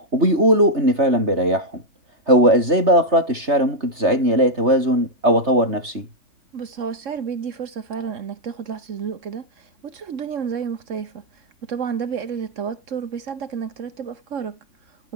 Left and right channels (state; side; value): late; left; 3.3 ms